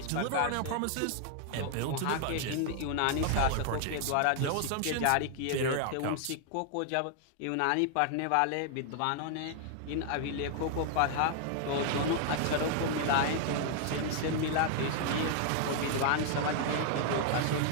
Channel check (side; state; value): both; different; correlation 0.00